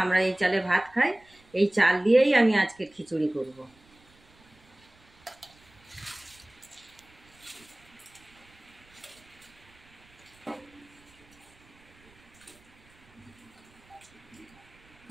আমরা এই চালে ভাত খাই। এই চাল দিয়েই আমি আজকে খিচুড়ি করব।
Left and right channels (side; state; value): right; noise; rumble, 28 dB below the sound